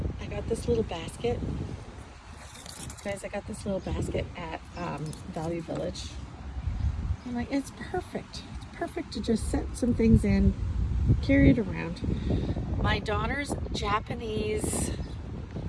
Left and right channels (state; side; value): identical; both; correlation 1.00